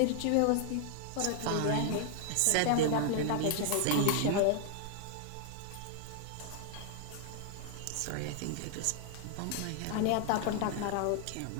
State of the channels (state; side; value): different; both; correlation 0.00